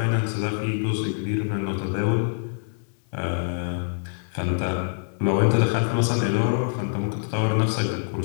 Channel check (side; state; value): right; silent; digital silence